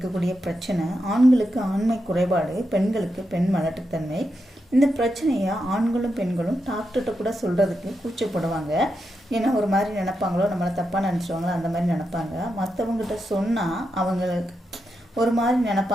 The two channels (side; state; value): both; normal; correlation 0.86